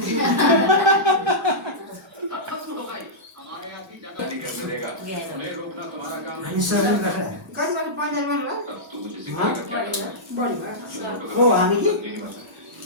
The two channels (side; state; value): both; normal; correlation -0.13